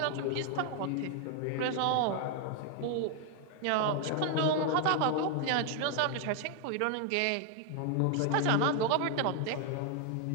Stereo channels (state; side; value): different; both; correlation 0.00